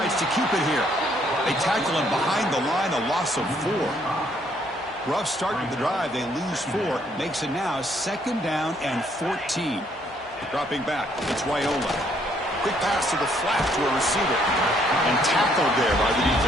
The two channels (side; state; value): both; normal; correlation 0.68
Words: to keep it here. They tackle him behind the line, a loss of 4. Rough start to the drive. They lose 4. Makes it now 2nd down and 14. Dropping back, it's Raiola. Quick pass to the flat to a receiver. And tackled there by the